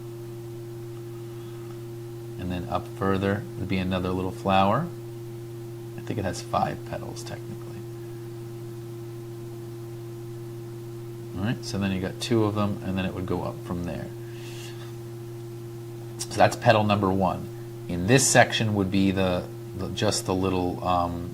And then up further would be another little flower. I think it has 5 petals technically. All right, so then you got 2 of them, and then it would go up from there. So that's petal number 1. In this section would be just the little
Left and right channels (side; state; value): both; identical; correlation 1.00